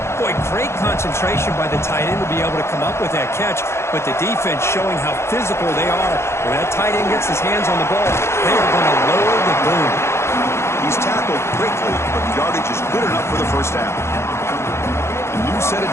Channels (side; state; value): right; late; 0.13 ms